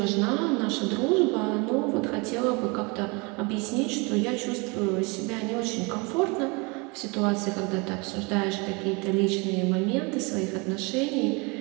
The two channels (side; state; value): left; quieter; 29.3 dB